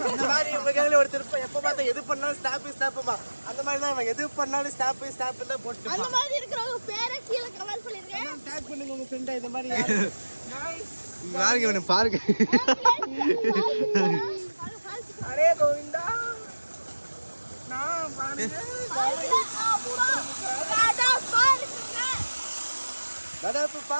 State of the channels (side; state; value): both; inverted; correlation -1.00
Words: அந்த மாதிரி உங்க கையில ஒரு திருப்பம் எப்ப பார்த்தா எது பண்ணாலும் ஸ்னாப்புமா. அந்த மாதிரி தான் எது பண்ணாலும் ஸ்னாப் தான் போட்டு. அந்த மாதிரி இருக்கிறவங்க பேரை கீழே கமெண்ட் பண்ணிருங்க. டேக் பண்ணுங்க உங்க ஃப்ரெண்ட. இந்த மாதிரி பாருங்க இவனை பாருங்க. அரே கோவிந்தா நான் பாருங்க. நடப்பு